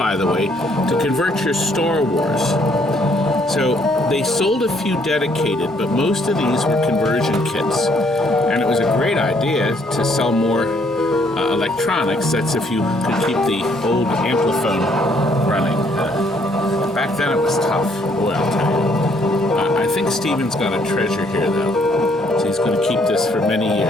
the way, to convert your Star Wars. So they sold a few dedicated, but most of these were conversion kits. And it was a great idea to sell more electronics. That's if you could keep the old Ampliphone running. Back then it was tough. Boy, I'll tell you. I think Steven's got a treasure here, though. So he's going to keep this for many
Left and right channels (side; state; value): both; normal; correlation 0.67